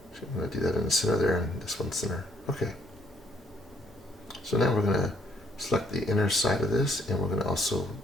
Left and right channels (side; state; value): both; normal; correlation 0.67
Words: So I'm going to do that in the center there and this one center. Okay. So now we're going to select the inner side of this and we're going to also